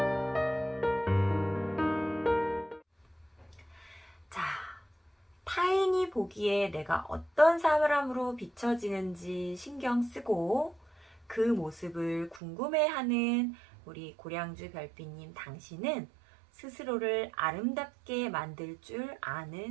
자, 타인이 남이 보기에 내가 어떤 사람으로 비춰지는지 신경 쓰고 그 모습을 궁금해하는 우리 고량주 별빛님 당신은 스스로를 아름답게 만들 줄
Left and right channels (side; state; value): left; drops out; at 12.4 s